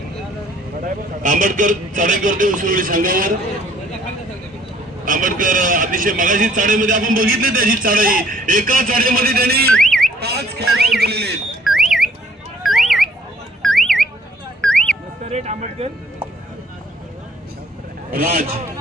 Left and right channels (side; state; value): both; normal; correlation 0.60